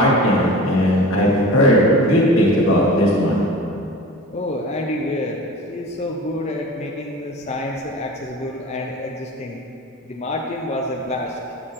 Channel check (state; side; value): normal; both; correlation 0.37